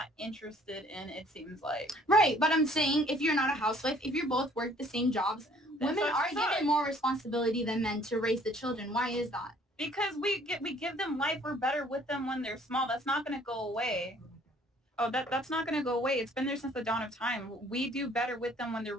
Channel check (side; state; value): both; normal; correlation 0.58